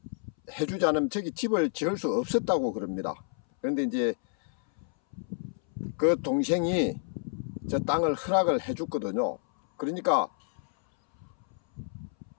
해주지 않으면 저기 집을 지을 수 없었다고 그럽니다. 그런데 이제 그 동생이 저 땅을 허락을 해줬거든요. 그러니까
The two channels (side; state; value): right; silent; 58 dB below the other